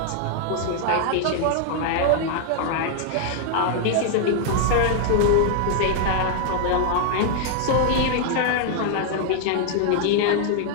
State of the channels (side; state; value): both; different; correlation 0.00